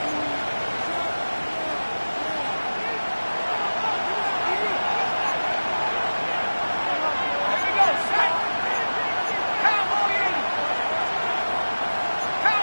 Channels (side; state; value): both; inverted; correlation -1.00